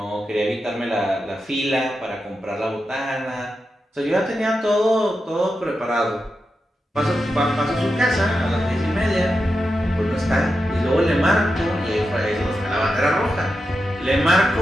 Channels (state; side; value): normal; both; correlation 0.89